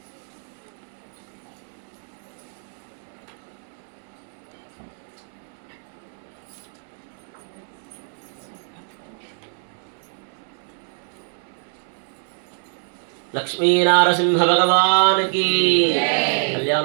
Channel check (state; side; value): silent; left; 62 dB below the other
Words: లక్ష్మీ నారసింహ భగవాన్ కి